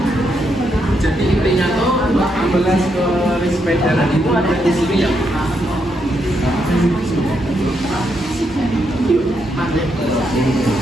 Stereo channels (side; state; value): both; normal; correlation 0.79